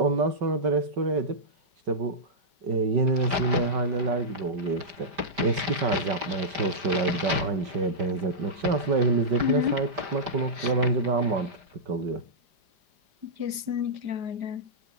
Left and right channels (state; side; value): late; left; 5.1 ms